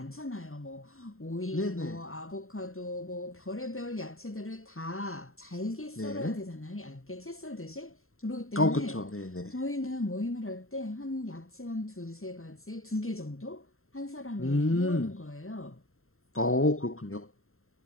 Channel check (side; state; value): right; late; 0.62 ms